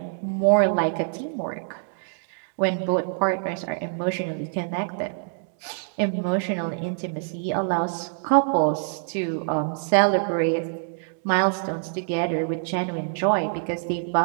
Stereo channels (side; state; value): left; silent; digital silence